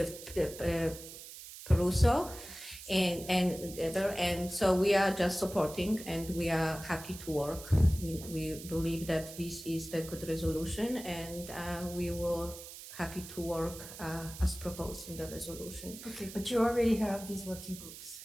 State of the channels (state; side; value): noise; right; hiss, 13 dB below the sound